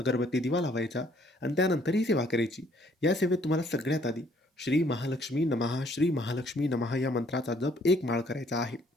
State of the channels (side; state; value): both; normal; correlation 0.63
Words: दिवा लावायचा आणि त्यानंतर ही सेवा करायची. या सेवेत तुम्हाला सगळ्यात आधी श्री महालक्ष्मी नमः, श्री महालक्ष्मी नमः या मंत्राचा जप 1 माळ करायचा आहे.